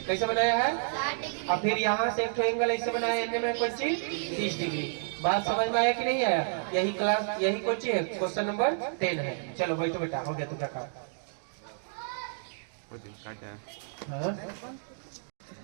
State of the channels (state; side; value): silent; left; digital silence